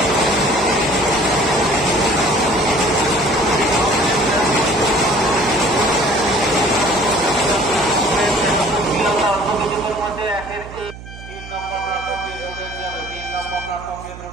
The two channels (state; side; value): noise; right; hum, 15 dB below the sound